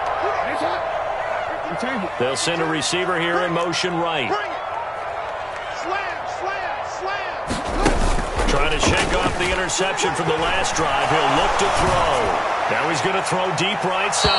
They'll send a receiver here in motion right. Trying to shake off the interception from the last drive. He'll look to throw. Now he's going to throw deep right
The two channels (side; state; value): both; identical; correlation 1.00